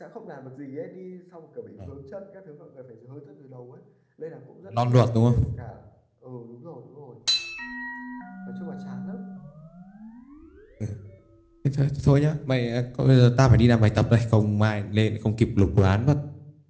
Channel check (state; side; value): identical; both; correlation 1.00